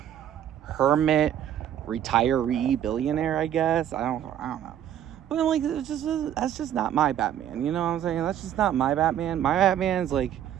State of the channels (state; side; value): quieter; left; 10.5 dB